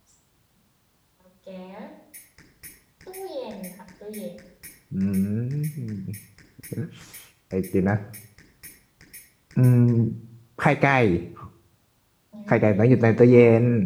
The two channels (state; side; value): identical; both; correlation 1.00